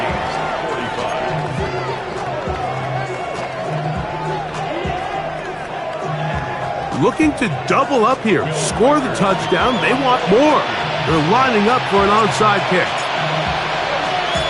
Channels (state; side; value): identical; both; correlation 1.00